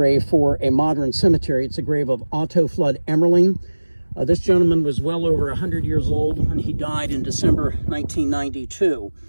for a modern cemetery. It's a grave of Otto Flood Emerling. This gentleman was well over 100 years old when he died in December 1992.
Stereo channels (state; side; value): inverted; both; correlation -1.00